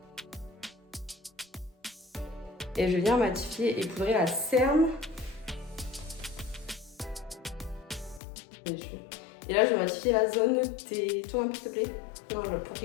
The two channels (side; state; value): right; drops out; at 8.2 s